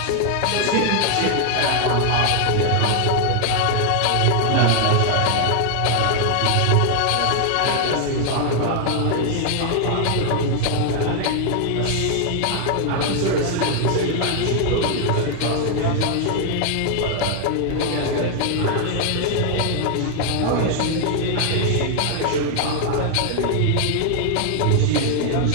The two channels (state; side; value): different; both; correlation 0.00